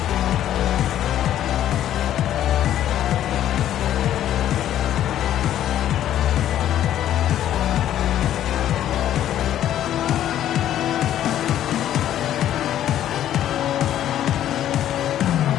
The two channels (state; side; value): quieter; right; 11.6 dB